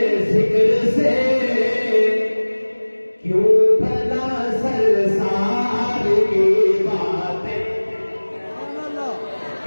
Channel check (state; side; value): inverted; both; correlation -1.00